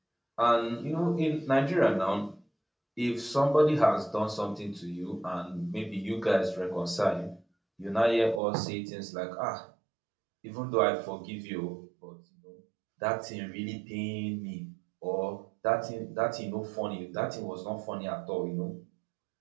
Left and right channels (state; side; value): drops out; left; at 8.4 s